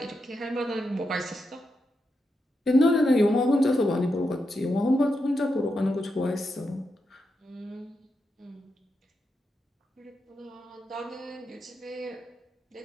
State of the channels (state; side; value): normal; both; correlation 0.85